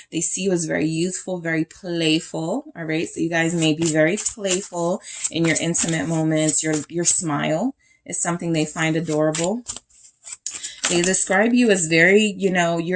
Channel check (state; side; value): identical; both; correlation 1.00